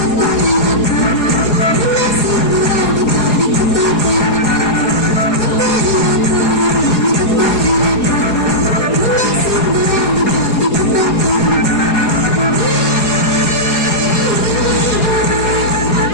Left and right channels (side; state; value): right; late; 4.8 ms